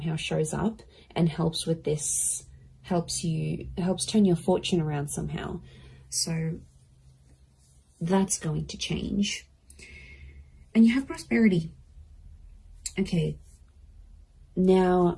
shows up and helps with this, helps turn your fortune around somehow. So that's going to change. And you have prosperity. Okay.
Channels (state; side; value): identical; both; correlation 1.00